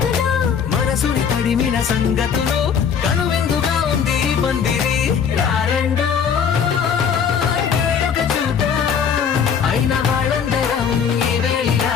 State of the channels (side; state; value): right; quieter; 7.2 dB